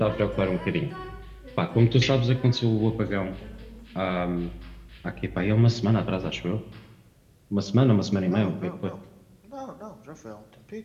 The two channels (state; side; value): identical; both; correlation 1.00